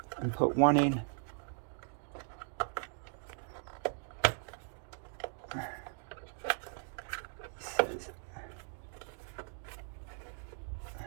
and put one in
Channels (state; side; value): silent; left; 52 dB below the other